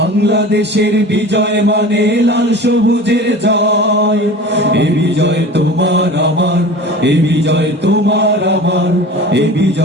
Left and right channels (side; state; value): both; normal; correlation 0.37